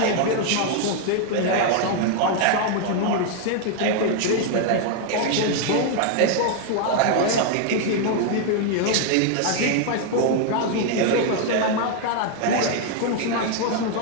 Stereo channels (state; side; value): different; both; correlation 0.00